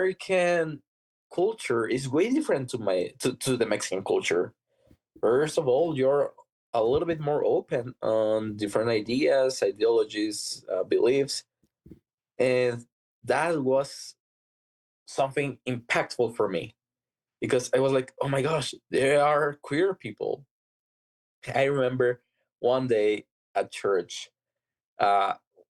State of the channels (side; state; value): both; identical; correlation 1.00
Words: culture is way different to the Mexican culture. First of all, you're a little bit more open on different ideas, ideologies, beliefs, and that was something impactful for me because I was like, oh my gosh, there are queer people. I remember one day at church, uh,